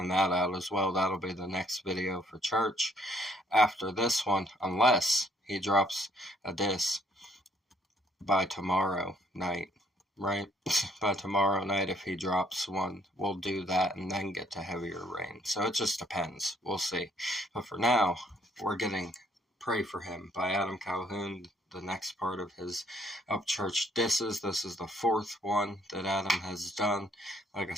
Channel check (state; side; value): normal; both; correlation 0.66